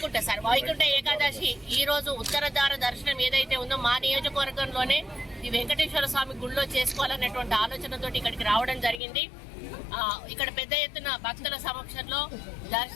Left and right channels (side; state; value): right; drops out; at 9.0 s